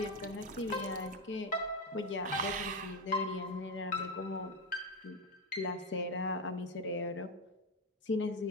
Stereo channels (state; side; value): normal; both; correlation 0.12